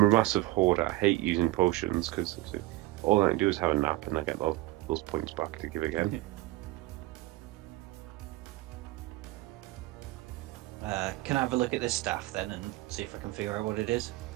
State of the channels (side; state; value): left; quieter; 18.5 dB